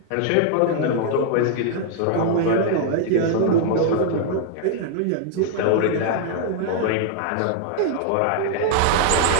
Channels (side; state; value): both; different; correlation -0.01